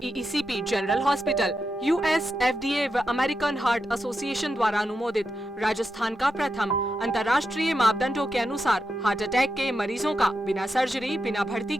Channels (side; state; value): both; normal; correlation 0.87